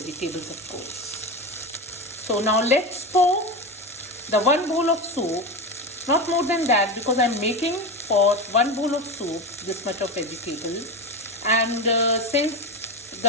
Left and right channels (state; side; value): normal; both; correlation 0.21